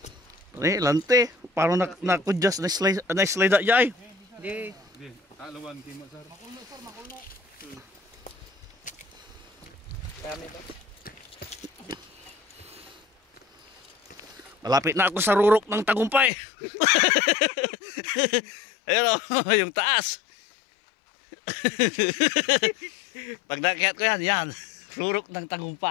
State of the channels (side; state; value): right; drops out; at 16.3 s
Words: Lante. Parang nakudjas na slide na dyan. Hindi. Alawan kimo sir. Makulno sir, makulno. Malapit na ako sa rurok ng tagumpay. Ayun o, yung taas. Pag nakihat ko yan. Rurok ng